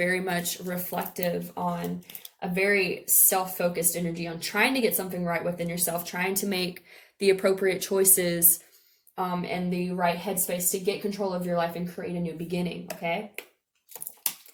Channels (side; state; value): both; identical; correlation 1.00